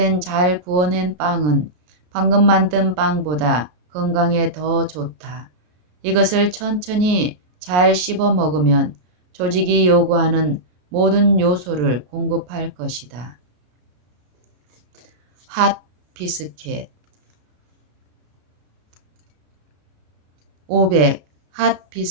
잘 구워낸 빵은 방금 만든 빵보다 건강에 더 좋다. 이것을 천천히 잘 씹어 먹으면 조직이 요구하는 모든 요소를 공급할 것이다. 핫 비스켓. 500. 핫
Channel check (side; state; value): left; late; 33 ms